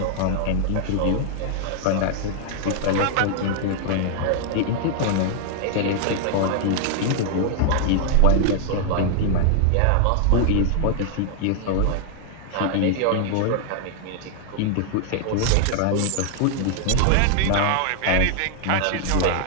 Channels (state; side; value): different; both; correlation 0.00